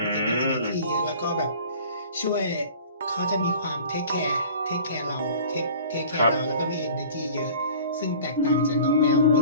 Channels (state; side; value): inverted; both; correlation -0.44